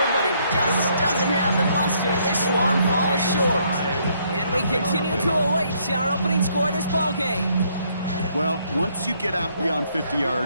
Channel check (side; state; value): both; inverted; correlation -0.69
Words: but it just doesn't have the muster. This one falls short. And we continue to await our opening score of this ball game. Well, once you get out beyond 50